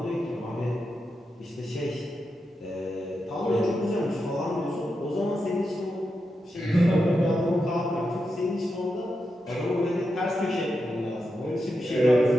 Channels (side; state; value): both; normal; correlation 0.87